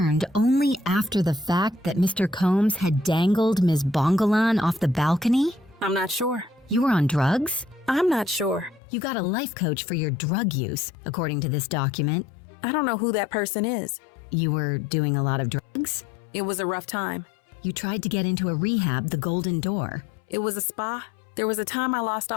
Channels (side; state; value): right; drops out; at 8.8 s